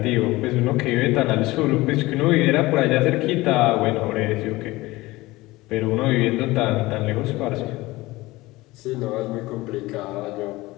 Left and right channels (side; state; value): right; quieter; 19.9 dB